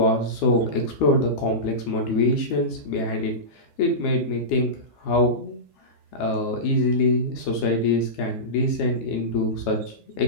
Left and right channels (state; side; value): late; right; 12 ms